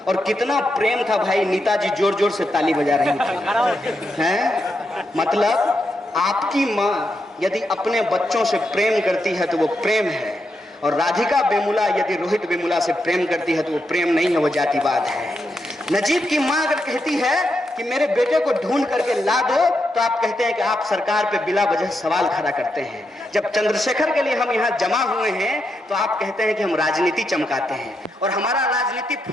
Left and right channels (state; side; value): normal; both; correlation 0.83